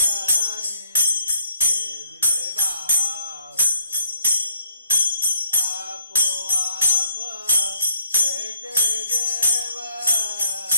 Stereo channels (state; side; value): inverted; both; correlation -0.66